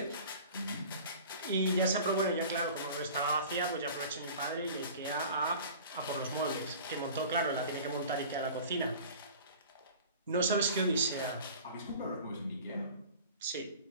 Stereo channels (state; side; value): inverted; both; correlation -0.42